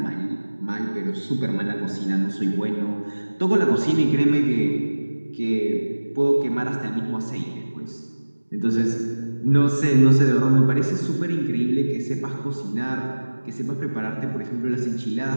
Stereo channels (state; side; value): inverted; both; correlation -1.00